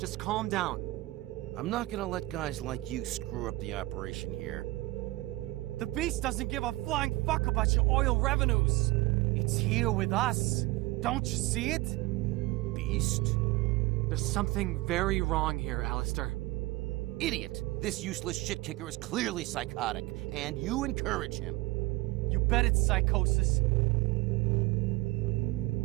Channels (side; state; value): left; quieter; 20.4 dB